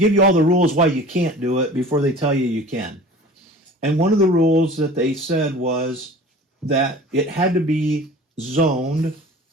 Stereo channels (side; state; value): both; normal; correlation 0.42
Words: you all the rules why you can't do it before they tell you you can. And one of the rules that they said was that it had to be zoned,